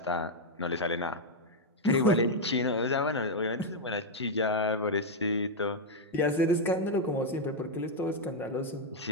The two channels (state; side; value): normal; both; correlation -0.01